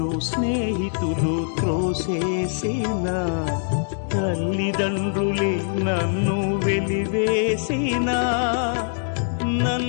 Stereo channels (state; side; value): silent; right; digital silence